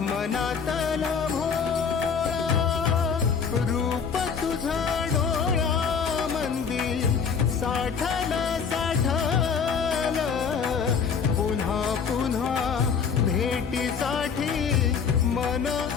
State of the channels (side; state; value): right; quieter; 6.3 dB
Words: मनातल भोळा रूप तुझं डोळा मंदी साठल साठल पुन्हा पुन्हा भेटीसाठी मन